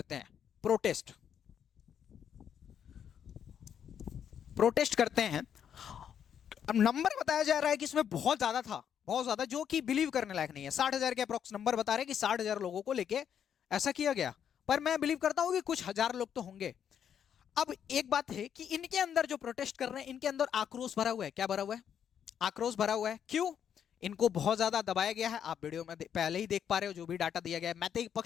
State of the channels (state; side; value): quieter; right; 8.6 dB